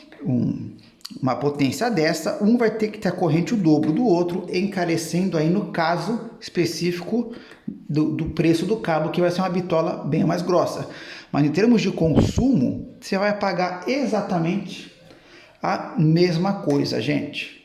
uma potência dessa, um vai ter que ter a corrente o dobro do outro, encarecendo aí no caso específico do preço do cabo, que vai ser uma bitola bem mais grossa. Mas em termos de consumo, você vai pagar exatamente a mesma coisa,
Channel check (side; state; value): both; identical; correlation 1.00